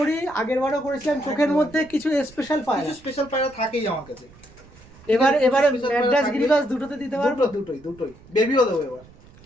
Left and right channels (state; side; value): noise; right; rumble, 24 dB below the sound